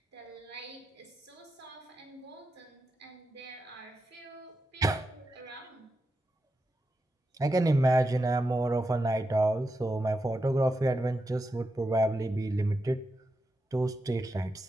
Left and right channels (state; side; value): normal; both; correlation 0.88